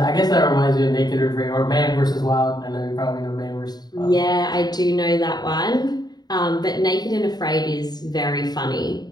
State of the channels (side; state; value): right; late; 0.20 ms